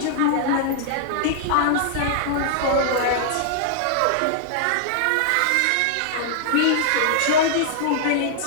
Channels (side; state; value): both; different; correlation -0.01